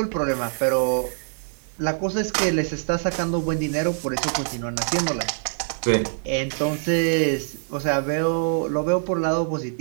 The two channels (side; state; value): left; silent; digital silence